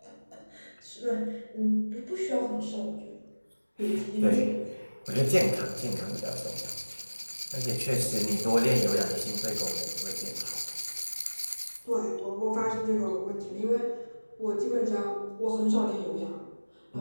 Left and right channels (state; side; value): inverted; both; correlation -1.00